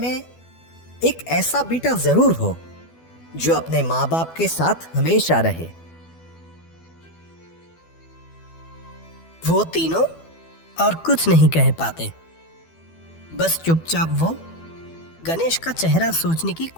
एक ऐसा बेटा जरूर हो जो अपने माँ बाप के साथ हमेशा रहे। वो तीनों और कुछ नहीं कह पाते। बस चुपचाप वो गणेश का चेहरा सोचने की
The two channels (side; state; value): right; late; 12 ms